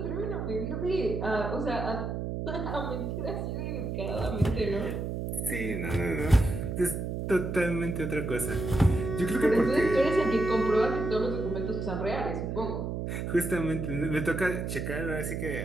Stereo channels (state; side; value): noise; right; hum, 3 dB below the sound